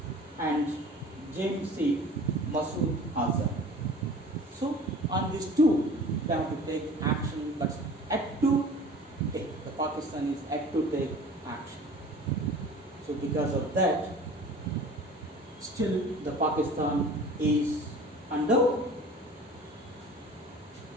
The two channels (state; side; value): normal; both; correlation 0.43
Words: and James C. Masood Azhar. So on these two, they have to take action, but yet to take. The Pakistan is yet to take action. So because of that, still the Pakistan is under